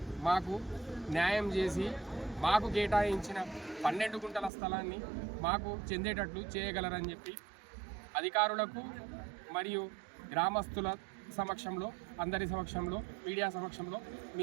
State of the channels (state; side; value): drops out; left; at 4.5 s